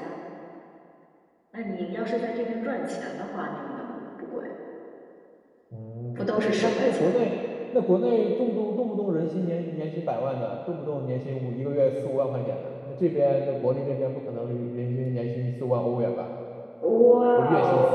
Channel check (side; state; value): both; identical; correlation 1.00